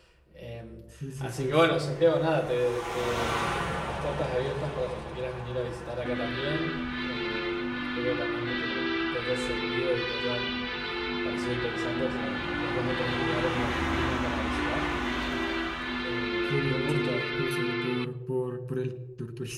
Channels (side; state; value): both; identical; correlation 1.00